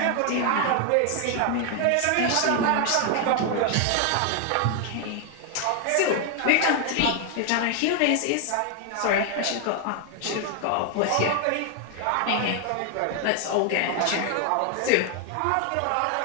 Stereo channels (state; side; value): different; both; correlation 0.00